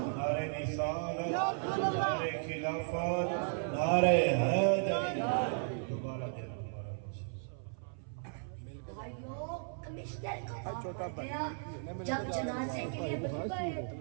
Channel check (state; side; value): silent; left; 54 dB below the other